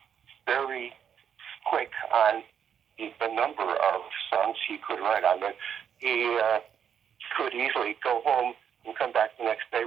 very quick on the number of songs he could write. I mean, he could easily go home and come back the next day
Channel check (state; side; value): quieter; left; 8.3 dB